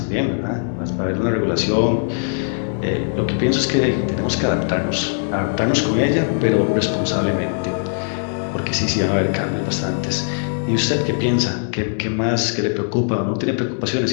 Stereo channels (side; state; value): right; silent; digital silence